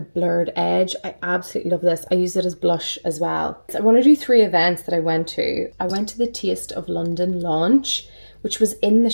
blurred edge. I absolutely love this. I use it as blush as well. So I want to do 3 events that I went to. I went to the Taste of London launch, which was in the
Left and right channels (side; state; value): both; inverted; correlation -1.00